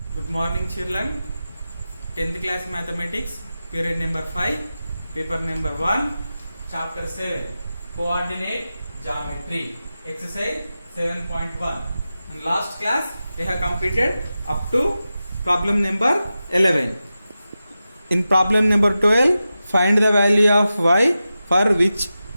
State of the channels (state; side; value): inverted; both; correlation -0.92